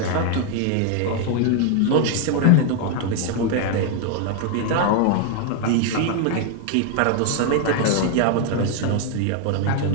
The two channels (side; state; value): both; different; correlation 0.01